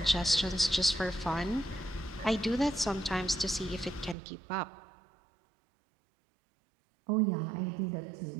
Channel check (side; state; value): left; drops out; at 4.2 s